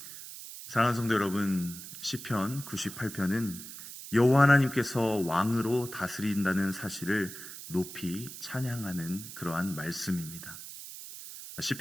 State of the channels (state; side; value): noise; right; hiss, 12 dB below the sound